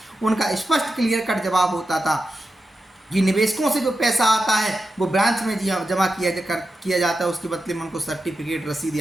उनका स्पष्ट क्लियर कट जवाब होता था कि निवेशकों से जो पैसा आता है वो ब्रांच में जमा किया जाता है, उसके बदले में उनको सर्टिफिकेट, रसीद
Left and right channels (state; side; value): normal; both; correlation 0.90